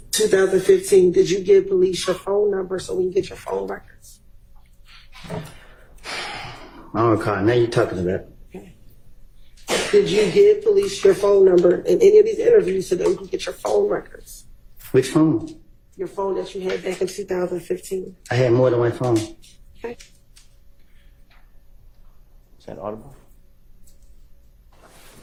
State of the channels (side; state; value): both; identical; correlation 1.00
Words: did you give police your phone number so we can get your phone records? I don't recall. Now you're talking about. Did you give police your phone number in any of these interviews so that we can get your phone records? Which phone? Your phone that you had back in 2015. I had more than one phone. Okay. Is that audible?